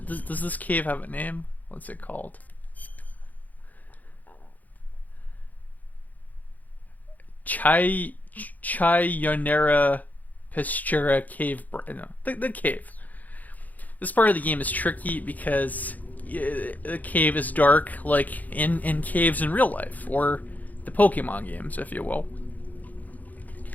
does this cave have a name? What's it called? Chionera Pestura cave. No, the cave. This part of the game is tricky because the cave is dark, like in caves in real life, or the Pokemon games, if you will.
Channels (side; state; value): right; late; 0.080 ms